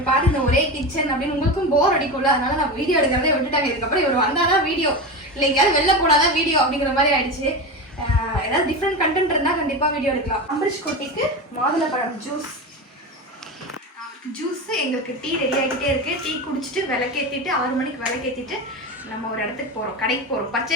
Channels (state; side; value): normal; both; correlation 0.22